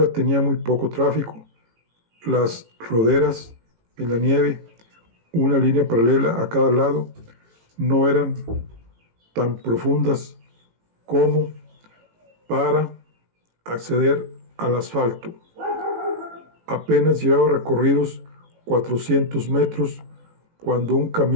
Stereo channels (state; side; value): late; left; 18 ms